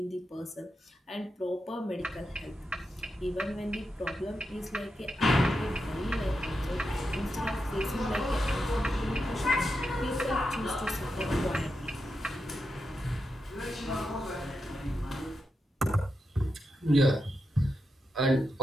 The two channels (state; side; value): normal; both; correlation 0.87